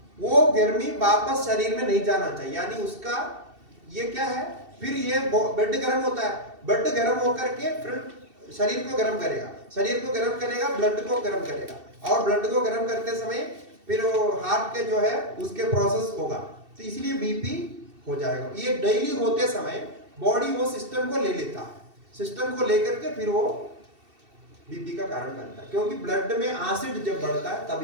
वो गर्मी वापस शरीर में नहीं जाना चाहिए, यानी उसका ये क्या है, फिर ये बेड गर्म होता है, बेड गर्म होकर के फिर शरीर को गर्म करेगा, शरीर को गर्म करेगा, ब्लड को गर्म करेगा, और ब्लड को गर्म करते समय फिर वो हार्ट के जो है उसके प्रोसेस होगा, तो इसलिए बीपी हो जाएगा। ये डेली होते समय बॉडी वो सिस्टम को ले लेता है, सिस्टम को लेकर के फिर वो बीपी का कारण बनता है। क्योंकि ब्लड में एसिड जब बढ़ता है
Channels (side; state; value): left; late; 2.7 ms